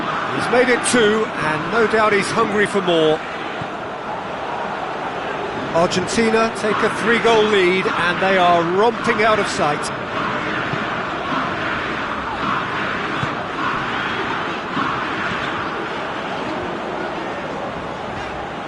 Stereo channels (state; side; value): identical; both; correlation 1.00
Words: He's made it 2, and no doubt he's hungry for more. Argentina take a 3-goal lead, and they are romping out of sight.